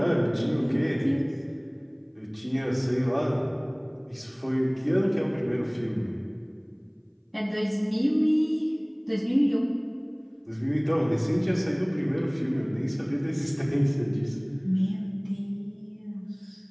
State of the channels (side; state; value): both; identical; correlation 1.00